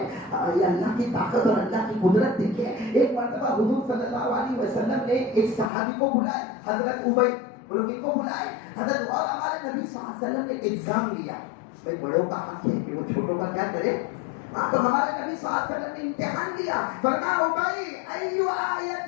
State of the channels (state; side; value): drops out; right; at 5.7 s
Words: یہ اللہ کی طاقت اور اللہ کی قدرت دیکھے. ایک مرتبہ حضور صلی اللہ علیہ وسلم نے ایک صحابی کو بلائے, حضرت ابی, بولو کن کو بلائے؟ حضرت, اور ہمارے نبی صلی اللہ علیہ وسلم نے ایگزام لیا. بھائی بڑوں کا حق ہے کہ وہ چھوٹوں کا کیا کرے, تو ہمارے نبی صلی اللہ علیہ وسلم نے امتحان لیا. فرمایا ابی ایو